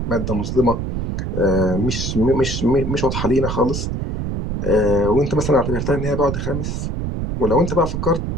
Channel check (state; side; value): noise; right; rumble, 3 dB below the sound